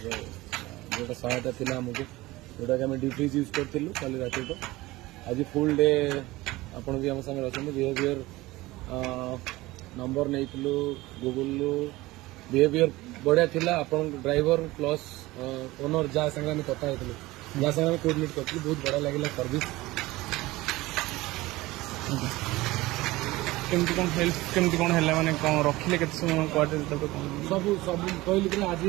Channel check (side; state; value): left; quieter; 19.4 dB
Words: जो सहायता थी आमको जोटा कि डिफ्रिज यूज करूँ कल रात तो आज फुल डे आपड़ भी आम सागर अच्छा बिहेवियर नंबर नहीं गूगल बिहेवियर बढ़िया थिला आपन ड्राइवर प्लस ओनर जहाँ संगे कथा होती जहाँ संगे कोर्डिनेट कर बहुत बढ़िया लगे सर्विस केमती कौन हेल्प केमती कौन है माने कौन रखिले केते समय क्वार्टर तक सब सब कहली कि आज